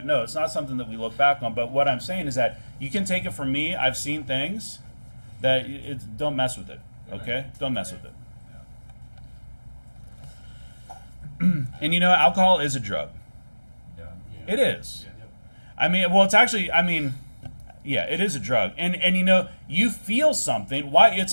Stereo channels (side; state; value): both; inverted; correlation -1.00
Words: No, it's not something that we look back on. But what I'm saying is that you can take it from me. I've seen things that don't mess with it. Okay? Don't mess with it. And alcohol is a drug. It is. I mean, well, it's actually, yeah, it is a drug. And you feel something. Why?